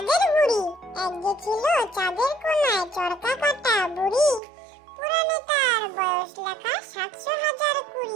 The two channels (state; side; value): drops out; left; at 4.4 s